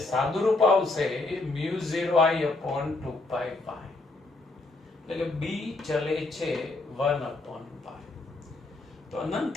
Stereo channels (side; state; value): right; quieter; 3.2 dB